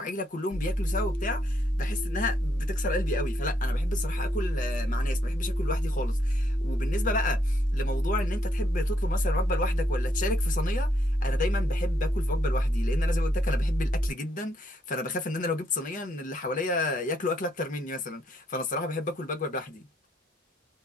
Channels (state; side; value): normal; both; correlation 0.74